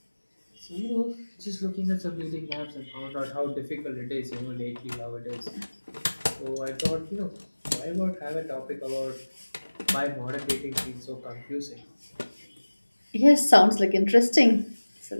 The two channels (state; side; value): inverted; both; correlation -1.00